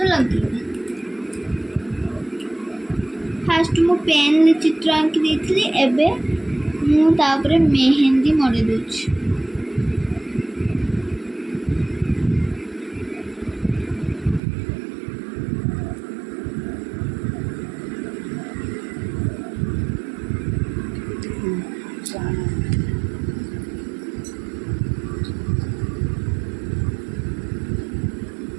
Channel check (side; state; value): left; drops out; at 14.4 s